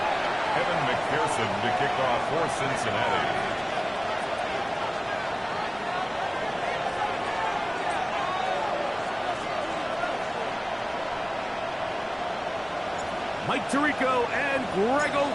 To kick off for Cincinnati. Mike Tirico and Greg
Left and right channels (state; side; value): identical; both; correlation 1.00